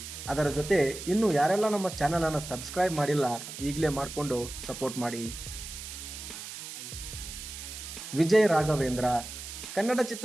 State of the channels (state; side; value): noise; right; hiss, 10 dB below the sound